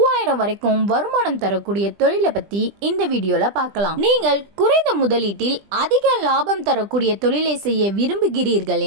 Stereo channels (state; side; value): late; left; 20 ms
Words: வரைக்கும் வருமானம் தரக்கூடிய தொழிலை பத்தி இந்த வீடியோல பார்க்கலாம். நீங்கள் குறைந்த முதலீட்டில் அதிக லாபம் தரக்கூடிய தொழிலை செய்ய விரும்புகிறீர்கள்